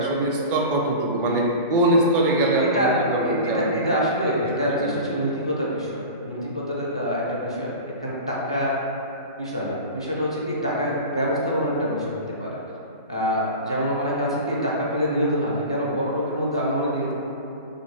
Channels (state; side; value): inverted; both; correlation -0.32